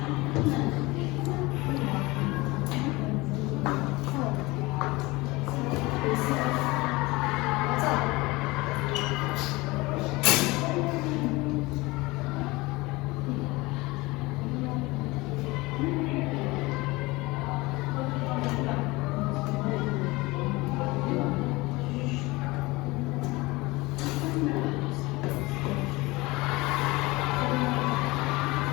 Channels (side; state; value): right; quieter; 22.3 dB